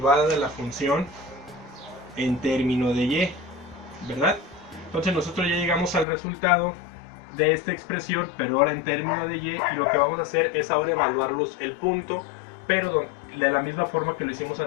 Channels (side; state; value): right; drops out; at 6.1 s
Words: de la función en términos de y, ¿verdad? Entonces nosotros ya llegamos al resultado de esta expresión, pero ahora en términos de y, y lo que vamos a hacer es ahora evaluar el punto, pero de la misma forma que lo hicimos